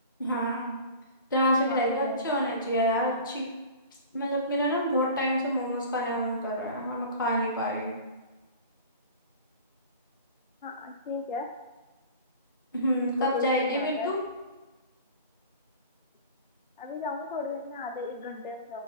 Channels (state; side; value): inverted; both; correlation -0.39